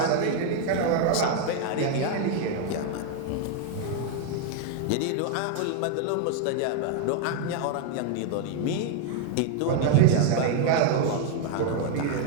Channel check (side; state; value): both; different; correlation 0.00